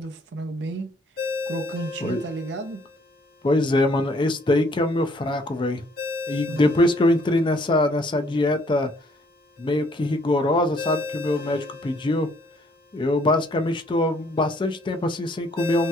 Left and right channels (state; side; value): normal; both; correlation 0.64